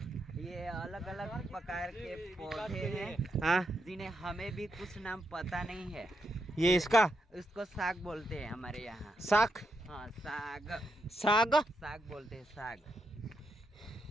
ये अलग अलग प्रकार के पौधे हैं, हाँ जिन्हें हमें भी कुछ नाम पता नहीं है। ये इसका इसको साग बोलते हैं हमारे यहाँ। साग, हाँ साग, साग साग बोलते हैं, साग।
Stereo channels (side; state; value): both; normal; correlation 0.82